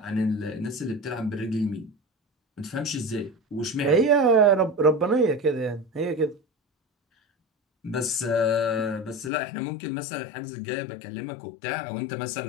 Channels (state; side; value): drops out; right; at 9.3 s